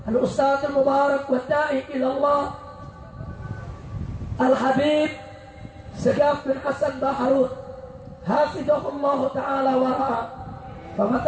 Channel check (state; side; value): identical; both; correlation 1.00